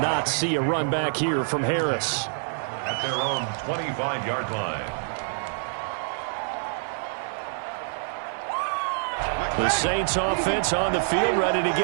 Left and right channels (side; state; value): left; silent; 61 dB below the other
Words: see a run back here from Harris. At their own 25-yard line. The Saints offense on the field, ready to